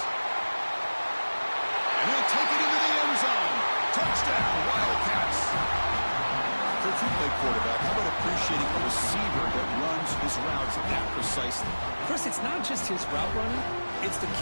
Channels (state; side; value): inverted; both; correlation -1.00